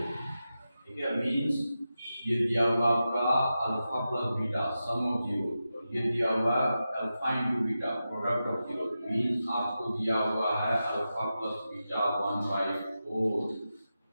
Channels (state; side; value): inverted; both; correlation -0.91